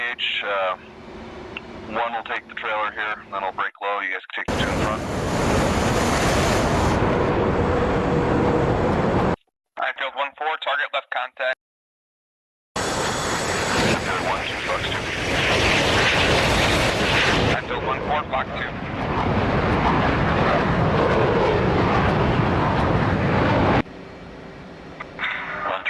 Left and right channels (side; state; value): both; identical; correlation 1.00